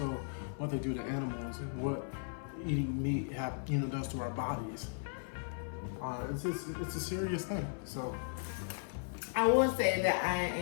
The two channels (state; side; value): silent; right; 53 dB below the other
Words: what they do to animals and what eating meat does to our bodies. It's a serious thing. So I will say that